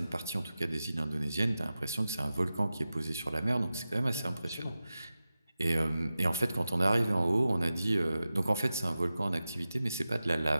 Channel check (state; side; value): inverted; both; correlation -0.94